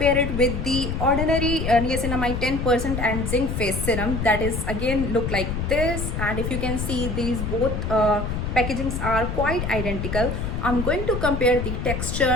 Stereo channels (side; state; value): left; noise; rumble, 3 dB below the sound